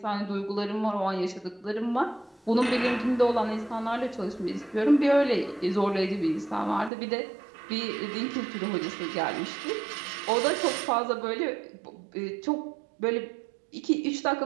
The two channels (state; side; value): drops out; left; at 6.9 s